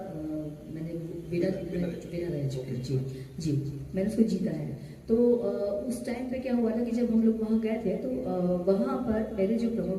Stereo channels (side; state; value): both; identical; correlation 1.00